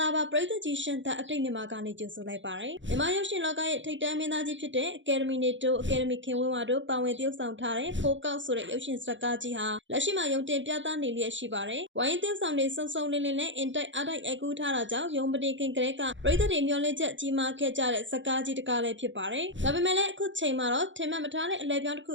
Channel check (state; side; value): late; left; 0.54 ms